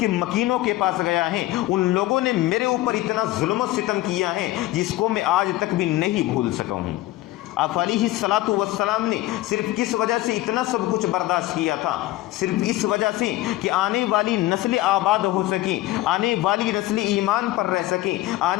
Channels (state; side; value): quieter; right; 16.7 dB